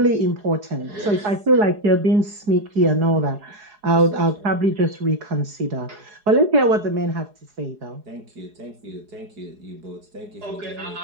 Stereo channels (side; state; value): left; late; 4.8 ms